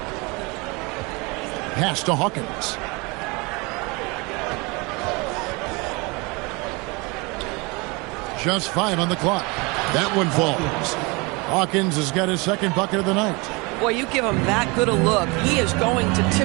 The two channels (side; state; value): left; quieter; 27.1 dB